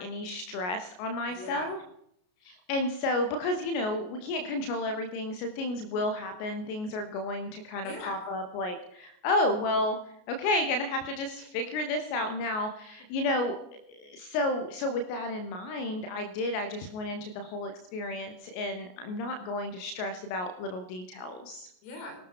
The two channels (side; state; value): right; late; 33 ms